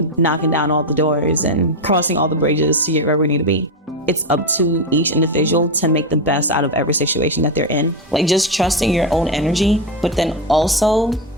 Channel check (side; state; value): both; normal; correlation 0.10